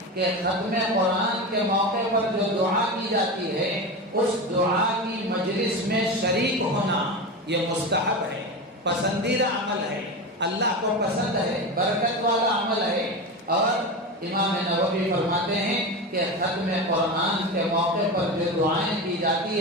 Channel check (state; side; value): normal; both; correlation 0.22